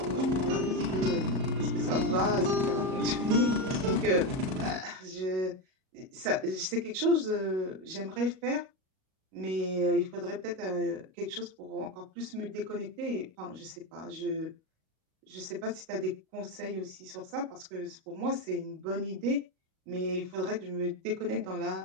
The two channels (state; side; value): late; left; 38 ms